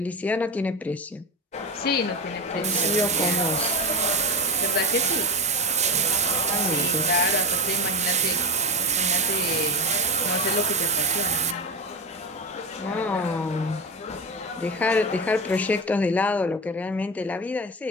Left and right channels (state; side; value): normal; both; correlation 0.21